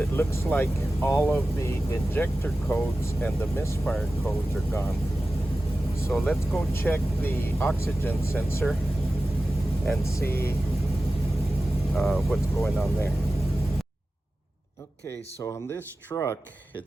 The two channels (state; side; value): normal; both; correlation 0.95